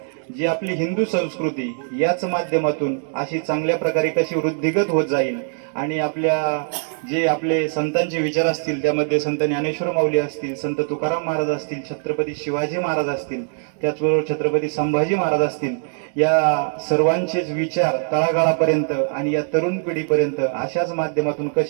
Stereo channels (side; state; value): left; silent; 56 dB below the other